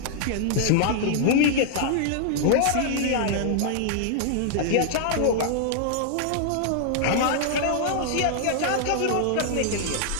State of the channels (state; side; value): different; both; correlation 0.00